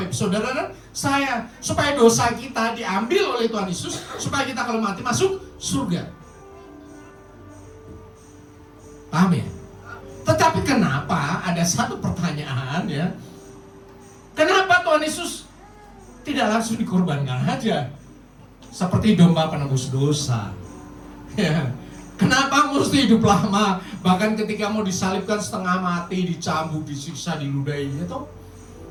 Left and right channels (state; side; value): identical; both; correlation 1.00